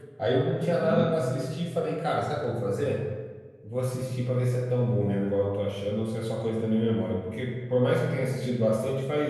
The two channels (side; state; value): both; identical; correlation 1.00